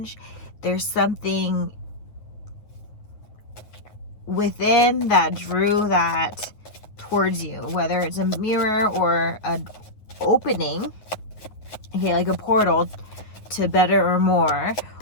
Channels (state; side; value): late; right; 9.4 ms